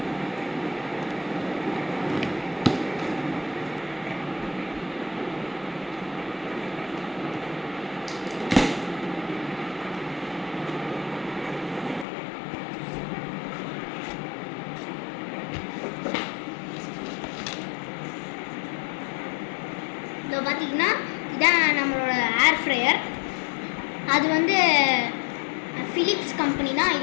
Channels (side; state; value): right; drops out; at 12.1 s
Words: இப்போ பார்த்தீங்கன்னா இதான் நம்மளோட ஏர் ஃப்ரையர். அது வந்து ஃபிலிப்ஸ் கம்பெனி தான்.